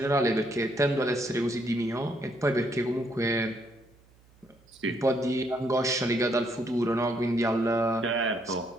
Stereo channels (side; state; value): right; noise; hum, 30 dB below the sound